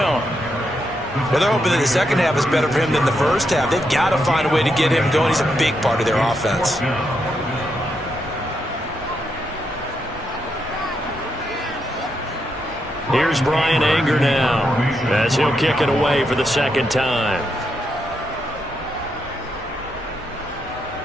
Well, they're hoping that the second half is better for him than the first half. They've got to find a way to get him going. He's a big part of their offense. Here's Brian Anger now as he'll kick it away for the 2nd time.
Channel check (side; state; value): both; normal; correlation 0.81